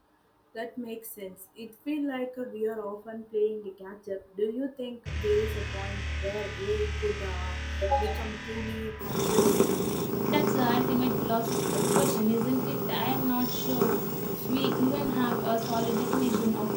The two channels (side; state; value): both; identical; correlation 1.00